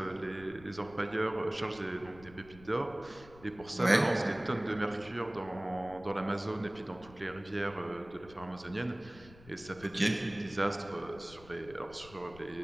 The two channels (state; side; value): noise; left; rumble, 20 dB below the sound